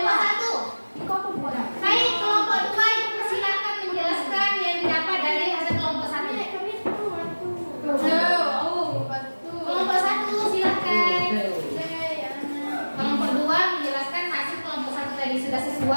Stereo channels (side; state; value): both; inverted; correlation -1.00